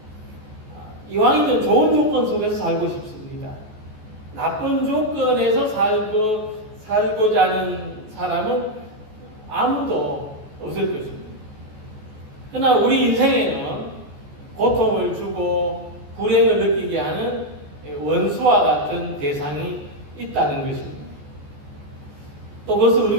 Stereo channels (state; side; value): late; left; 14 ms